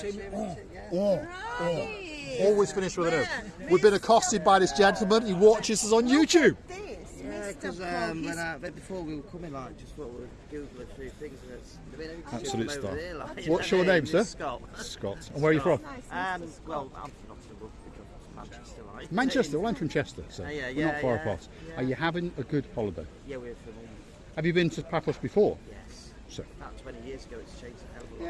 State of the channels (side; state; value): both; identical; correlation 1.00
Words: Oh. Always finish with an O. We've been accosted by this gentleman. He watches us on YouTube. Yeah, because before we were coming, just thought we'd Google a few things. And it's Absolute star. there, What's your name, sir? Scott. Scott. And where are you from? Well, I'm from Nottingham, Manchester. Like. Manchester. Well, I'm from Chester, so Yeah, we're not far yeah. apart. Are you having a good holiday? Yeah, we're from Have you been to Paphos before? Yes. So. About 20 years ago, it's changed a hell of a lot.